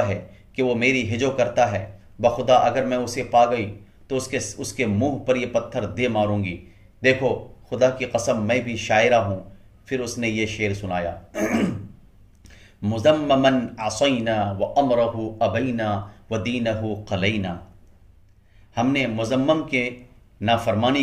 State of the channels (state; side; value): identical; both; correlation 1.00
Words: ہے کہ وہ میری ہجو کرتا ہے، بخدا اگر میں اسے پا گئی تو اس کے منہ پر یہ پتھر دے ماروں گی، دیکھو خدا کی قسم میں بھی شاعرہ ہوں۔ پھر اس نے یہ شعر سنایا، مذمما عصینا وامرہ ابینا ودینہ قلینا۔ ہم نے مذمم کے